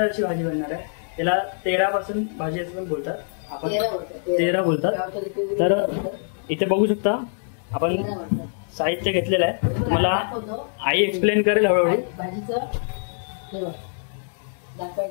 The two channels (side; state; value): right; silent; 63 dB below the other